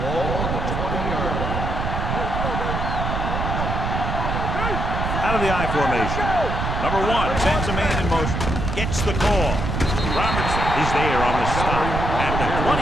the 20-yard line. Out of the I formation. Number 1 sends a man in motion. Gets the call. Robertson is there on the stop at the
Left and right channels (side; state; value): right; noise; rumble, 2 dB below the sound